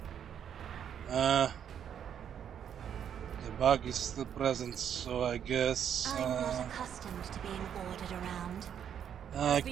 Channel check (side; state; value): left; quieter; 8.8 dB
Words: The bug is still present, so I guess I'm not accustomed to being ordered around. I The